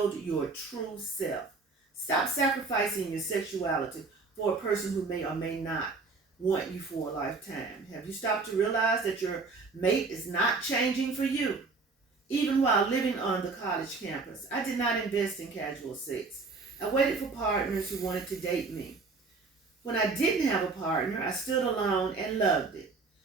your true self. Stop sacrificing your sexuality for a person who may or may not want you for a lifetime. Have you stopped to realize that your mate is not changing for you? Even while living on the college campus, I did not invest in casual sex. I waited for partners who wanted to date me. When I didn't have a partner, I stood alone and loved it.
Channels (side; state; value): left; quieter; 4.1 dB